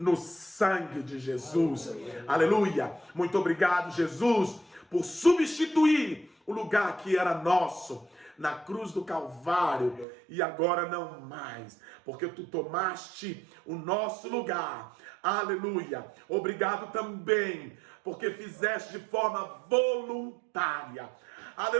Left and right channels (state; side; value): drops out; left; at 10.1 s